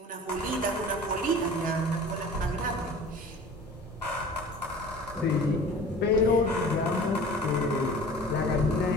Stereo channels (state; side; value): normal; both; correlation 0.43